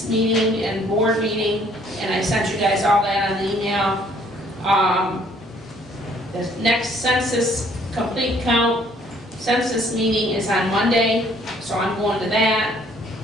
meeting and board meeting, and I sent you guys all that on the email. The next census complete count census meeting is on Monday, so I'm going to that.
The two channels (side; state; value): both; normal; correlation 0.61